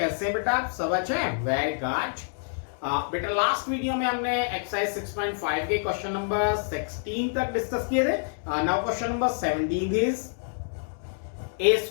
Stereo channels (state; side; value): silent; right; digital silence